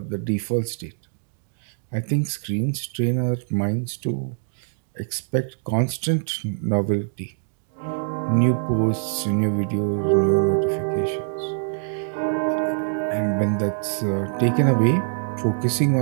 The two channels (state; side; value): silent; left; digital silence